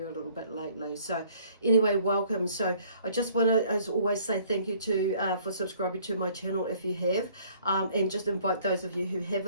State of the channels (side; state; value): both; inverted; correlation -0.58